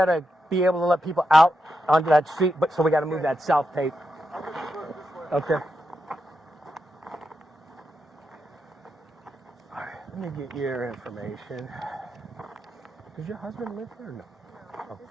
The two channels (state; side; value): normal; both; correlation 0.86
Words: to be able to let people out onto that street, but so we got to move that south tape. Okay. All right, let me get your information. Does your husband live here or no? Oh.